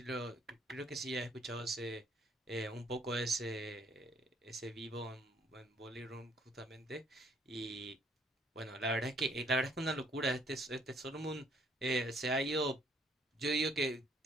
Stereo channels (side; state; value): both; normal; correlation 0.65